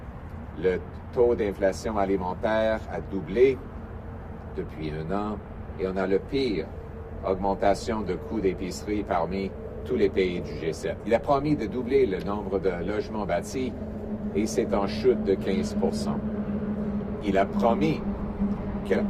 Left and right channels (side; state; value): both; identical; correlation 1.00